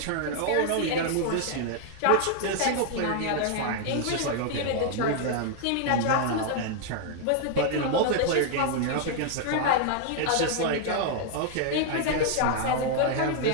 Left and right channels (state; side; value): different; both; correlation 0.00